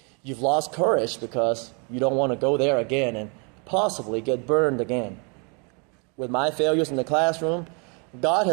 You've lost courage because you don't want to go there again and possibly get burned again. With my failures in the classroom, God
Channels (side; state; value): left; quieter; 34.2 dB